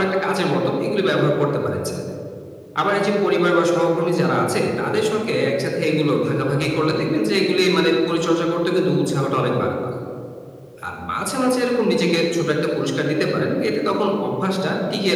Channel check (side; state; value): both; identical; correlation 1.00